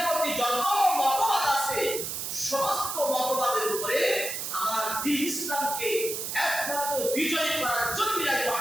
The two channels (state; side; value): noise; right; hiss, 4 dB below the sound